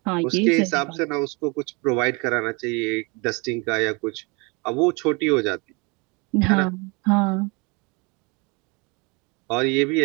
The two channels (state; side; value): quieter; left; 29.4 dB